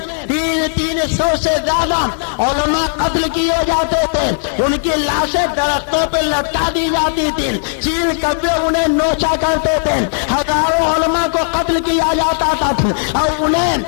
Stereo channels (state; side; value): silent; right; 62 dB below the other